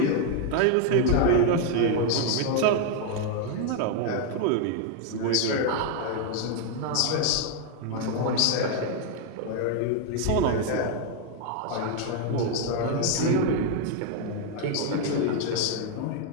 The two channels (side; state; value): both; different; correlation 0.01